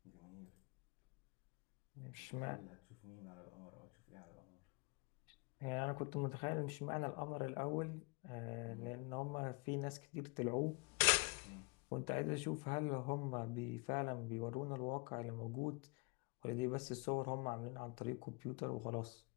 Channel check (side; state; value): right; quieter; 31.0 dB